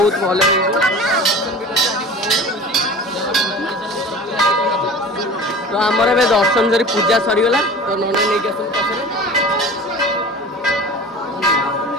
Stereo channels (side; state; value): both; normal; correlation 0.39